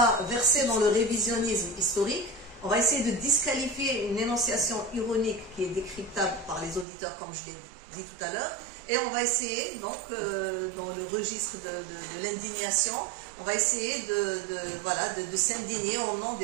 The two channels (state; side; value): drops out; left; at 6.9 s